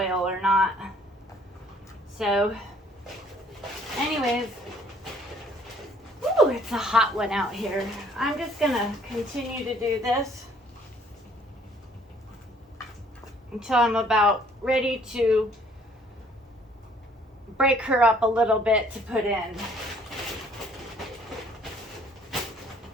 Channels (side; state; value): both; normal; correlation 0.59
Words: or not. So, anyways, ooh, it's a hot one out here. I'm just gonna continue to do this until I'm about ready to break her up a little bit to put in.